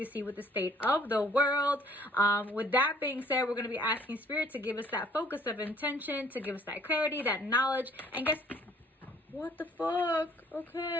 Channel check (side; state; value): both; normal; correlation 0.58